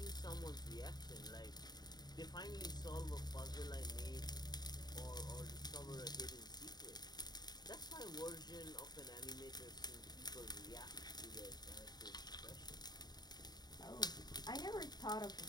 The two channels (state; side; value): late; right; 0.20 ms